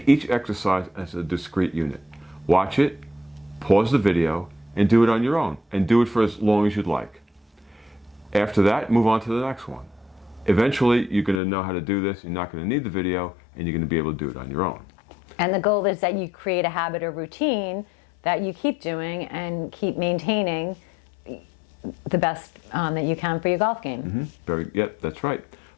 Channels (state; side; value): drops out; right; at 11.4 s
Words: each exercise as a discrete unit. Watch it, pause the video, and do it on your own, and do it for as long as you'd like. After that, move on to the next one. Eventually, you're going to know how to do this, you're not going to need the video, and you're going to be able to do it on your own. And the goal is that you create a habit or routine that you keep doing and keep maintaining the best that you can for your golf game. Yep, that's right.